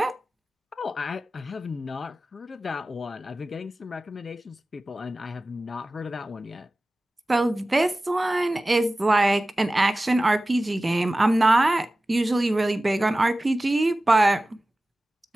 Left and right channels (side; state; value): both; normal; correlation 0.96